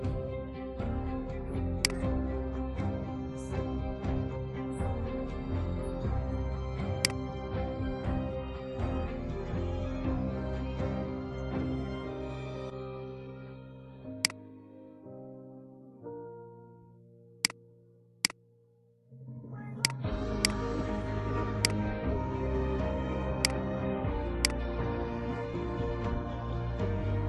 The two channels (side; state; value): both; identical; correlation 1.00